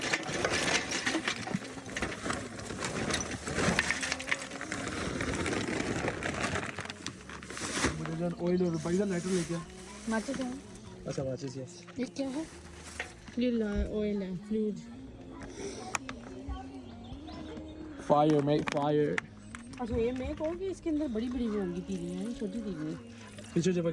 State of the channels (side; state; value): both; identical; correlation 1.00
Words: ऑयल और पैसा लाइटर लेके माचिस है? अच्छा माचिस, यस। ये क्या है? ये ऑयल है, फ्लूइड। Fire make fire. अच्छा, ये मैं कहूँ कि इसके अंदर बड़ी बड़ी होंगी तीलियाँ हैं, छोटी तीलियाँ। पीछे